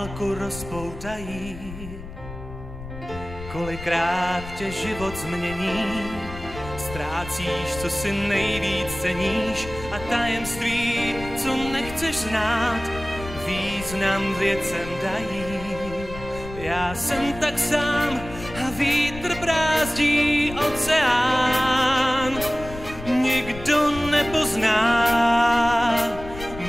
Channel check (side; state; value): left; noise; rumble, 12 dB below the sound